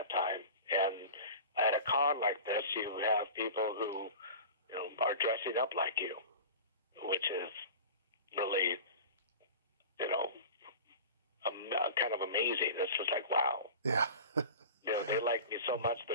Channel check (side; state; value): both; inverted; correlation -0.35